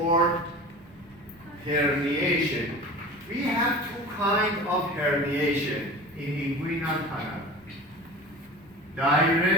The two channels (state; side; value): normal; both; correlation 0.35